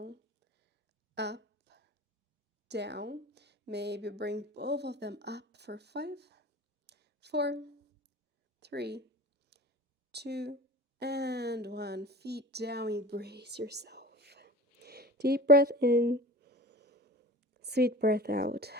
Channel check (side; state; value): both; normal; correlation 0.38